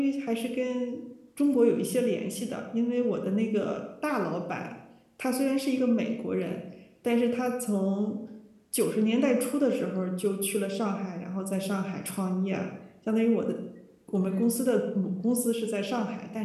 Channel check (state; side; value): identical; both; correlation 1.00